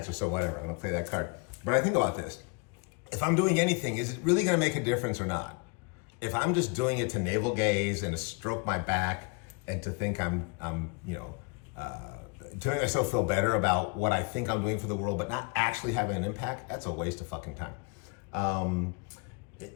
so whatever. I'm gonna play that card. But I think about this. If I'm doing anything, is it really gonna make a difference or not? If I'm just doing it to navel gaze and to stroke my back and to think I'm to make myself feel better about what I think I'm doing for the world, but not actually having an impact, that's a waste of fucking time.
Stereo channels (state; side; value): quieter; right; 32.6 dB